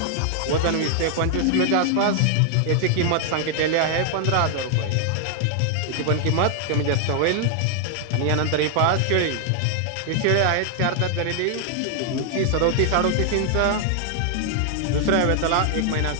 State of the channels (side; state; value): both; different; correlation 0.00